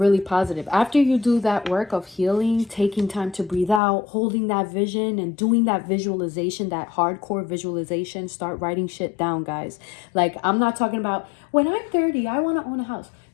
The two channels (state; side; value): drops out; right; at 3.8 s